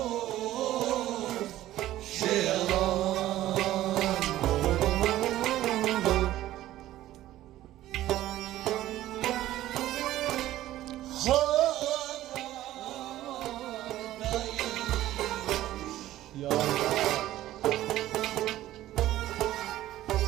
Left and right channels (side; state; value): left; quieter; 14.4 dB